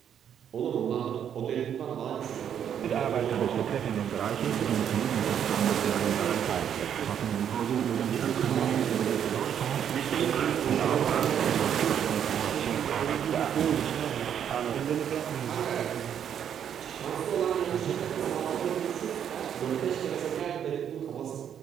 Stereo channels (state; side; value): quieter; left; 9.0 dB